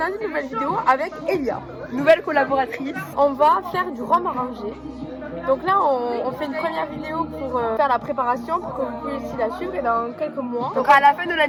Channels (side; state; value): both; identical; correlation 1.00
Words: une nouvelle vidéo avec Elia, nouvelle collaboratrice. On va faire du rhum arrangé. Donc là on fait une première vidéo pour faire la préparation pour que vous puissiez la suivre et dans quelques mois. Donc à la fin de